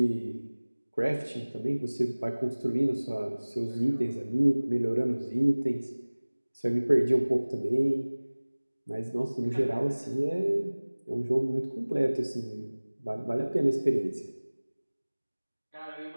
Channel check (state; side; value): inverted; both; correlation -1.00